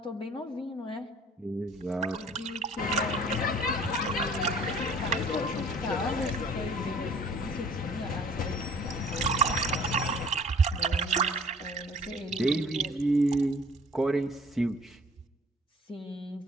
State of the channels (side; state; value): both; normal; correlation 0.52